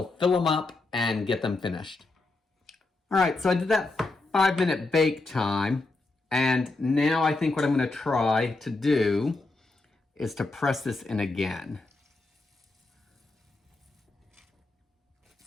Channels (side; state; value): right; quieter; 3.2 dB